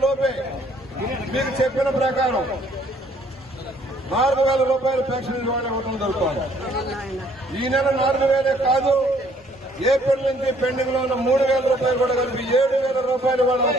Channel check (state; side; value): normal; both; correlation 0.63